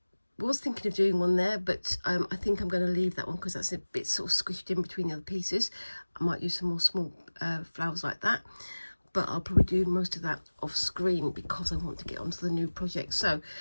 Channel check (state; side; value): inverted; both; correlation -1.00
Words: was thinking of doing one there, but I think I'm going to leave that one because that's a bit sort of squished in between the other pieces. I might use some more small flowers like that, but I'll probably do most of that off screen because I want to get onto the new project. So